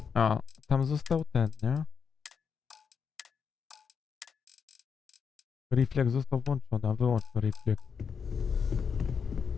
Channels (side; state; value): right; quieter; 6.4 dB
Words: A, tam został ten, nie? Refleks został włączony, a wyłącz to refleks.